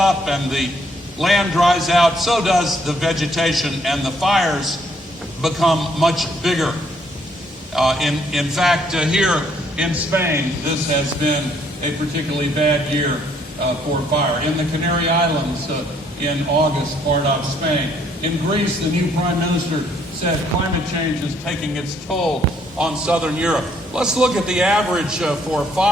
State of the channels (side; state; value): both; normal; correlation 0.67